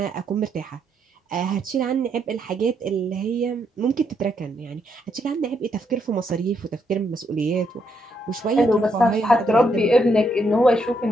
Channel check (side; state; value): both; normal; correlation 0.76